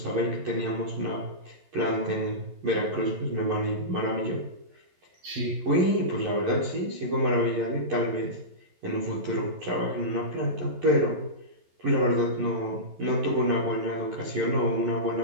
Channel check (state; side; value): late; left; 11 ms